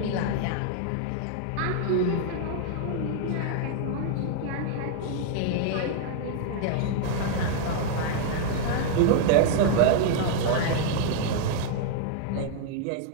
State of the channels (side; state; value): both; different; correlation 0.00